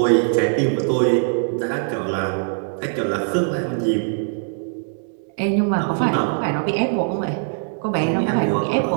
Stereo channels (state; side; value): silent; left; digital silence